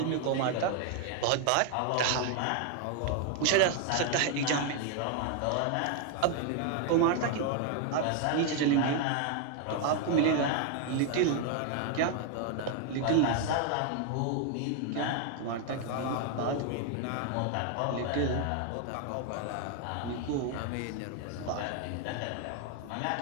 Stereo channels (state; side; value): different; both; correlation 0.00